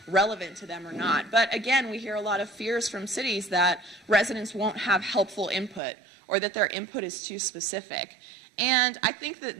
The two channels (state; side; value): drops out; left; at 5.8 s